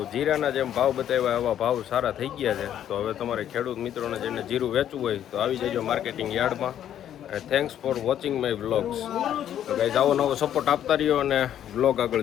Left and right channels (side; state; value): right; quieter; 10.6 dB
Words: જીરાના જેમ ભાવ બતાવ્યા એવા ભાવ સારા થઈ ગયા છે. તો હવે તમારે ખેડૂત મિત્રોને જેને જીરું વેચવું હોય તો આવી જજો માર્કેટિંગ યાર્ડમાં. અને thanks for watching my vlogs. તો ગાઈઝ આવો નવો સપોર્ટ આપતા રહ્યો અને વ્લોગ આગળ